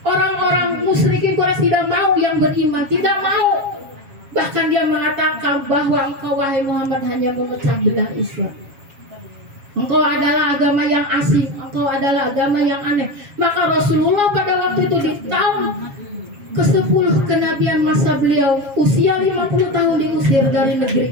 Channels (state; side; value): late; left; 7.3 ms